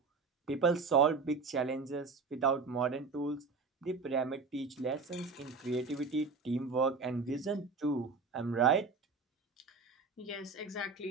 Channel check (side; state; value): left; quieter; 4.6 dB